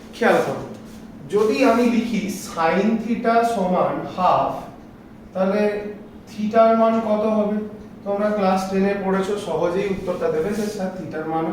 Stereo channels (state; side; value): identical; both; correlation 1.00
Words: খেয়াল করো। যদি আমি লিখি সাইন থিটা সমান হাফ, তাহলে থিটার মান কত হবে? তোমরা ক্লাস 10-এ পড়েছো, সহজেই উত্তরটা দেবে যে স্যার থিটার মান